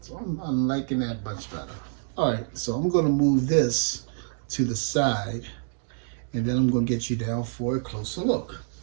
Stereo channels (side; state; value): left; silent; digital silence